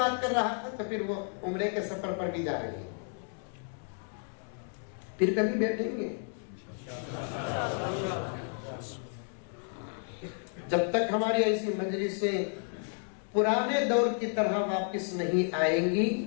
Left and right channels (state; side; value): silent; right; 57 dB below the other